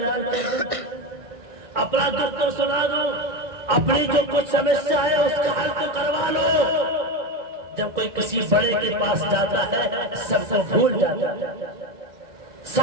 کر دوں, اپنا دکھ تو سنا دو, اپنی جو کچھ سمسیا ہے اس کا حل تو کروا لو. کسی بڑے کے پاس جاتا ہے سب کو بھول جاتا ہے،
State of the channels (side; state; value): left; late; 2.1 ms